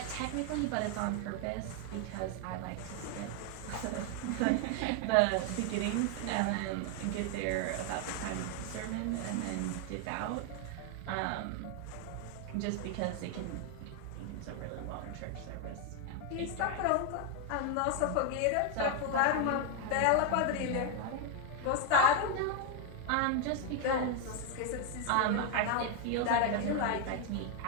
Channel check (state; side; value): different; both; correlation 0.01